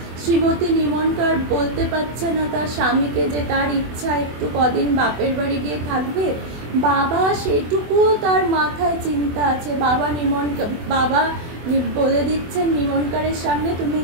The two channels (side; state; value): left; late; 24 ms